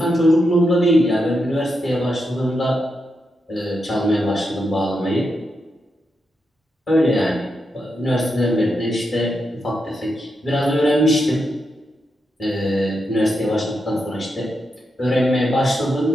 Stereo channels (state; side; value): normal; both; correlation 0.85